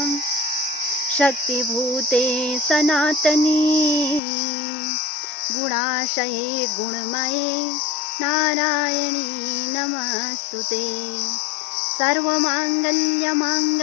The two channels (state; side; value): drops out; right; at 4.2 s